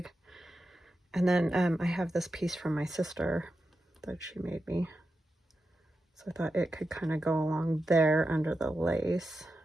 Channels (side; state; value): both; normal; correlation 0.90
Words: And then I have this piece from my sister that she made me. So I thought it could kind of go along there under the lace